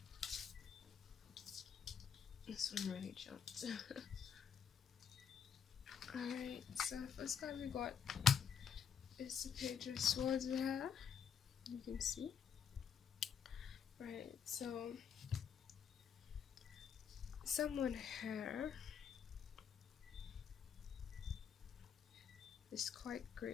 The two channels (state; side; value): quieter; right; 7.4 dB